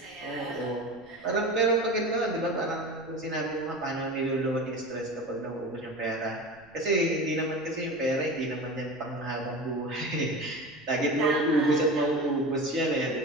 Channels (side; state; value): right; noise; rumble, 28 dB below the sound